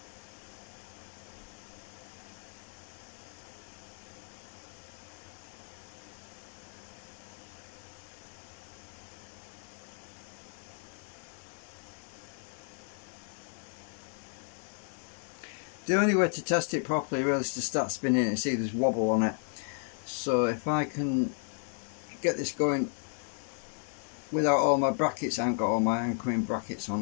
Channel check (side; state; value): right; silent; 55 dB below the other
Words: The only way to test it properly really is to start spinning it and see there's wobble on it. So if I can get this going without all my brackets, I haven't got all my anchoring brackets on,